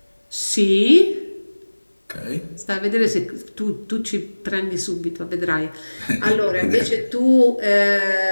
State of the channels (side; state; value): both; inverted; correlation -1.00